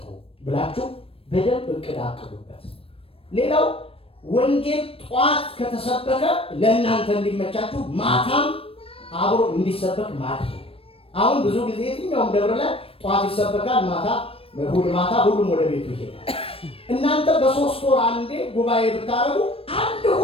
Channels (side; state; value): right; late; 0.28 ms